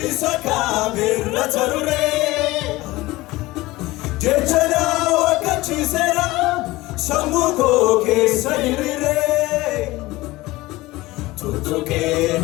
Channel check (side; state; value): right; quieter; 19.5 dB